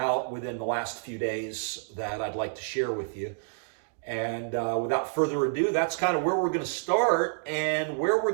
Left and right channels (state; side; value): silent; left; digital silence